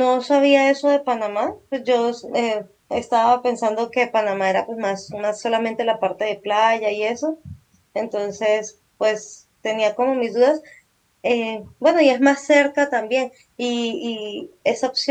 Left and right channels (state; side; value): identical; both; correlation 1.00